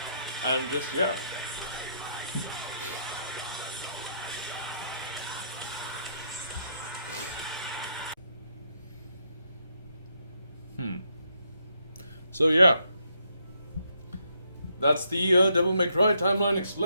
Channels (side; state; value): both; inverted; correlation -0.76